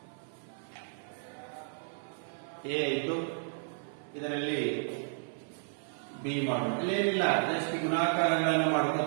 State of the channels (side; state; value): left; silent; 56 dB below the other